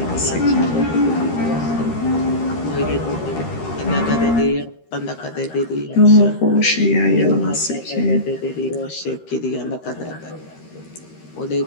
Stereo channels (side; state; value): right; late; 13 ms